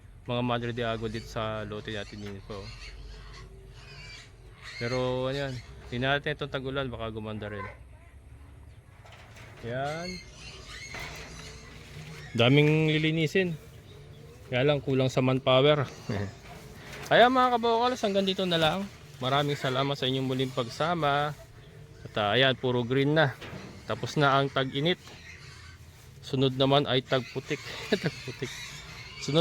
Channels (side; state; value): both; identical; correlation 1.00